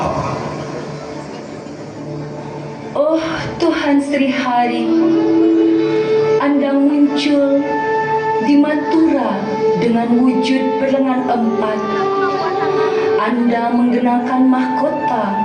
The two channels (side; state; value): both; identical; correlation 1.00